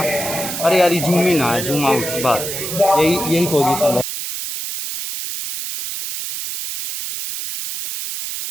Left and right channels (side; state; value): right; noise; hiss, 6 dB below the sound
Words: अरे यार ये जूम ही ना है, जूम आउट बात, यही पोजीशन है।